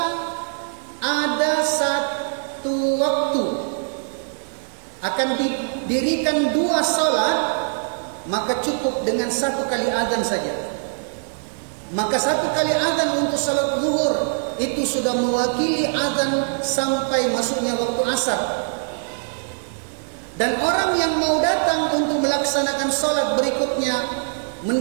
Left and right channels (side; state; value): left; silent; digital silence